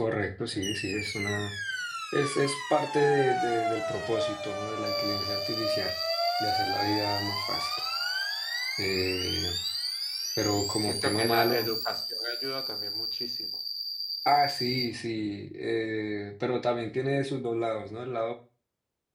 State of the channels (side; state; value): both; identical; correlation 1.00